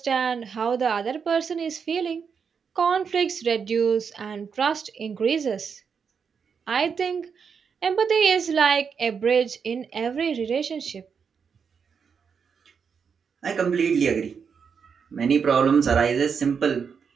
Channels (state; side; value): quieter; left; 6.3 dB